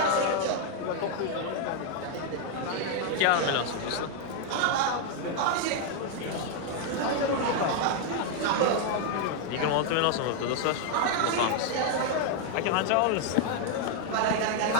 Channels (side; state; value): both; different; correlation 0.00